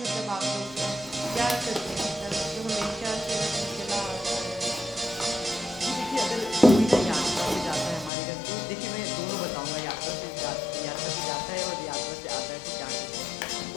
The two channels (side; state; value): right; drops out; at 8.1 s